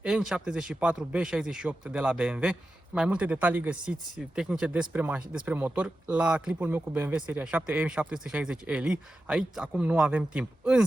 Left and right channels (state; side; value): normal; both; correlation 0.91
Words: N74B68 de la BMW. Mai multe detalii găsiți tehnice despre motor la clipul meu cu BMW seria 7 M760Li. Aici acum nu avem timp.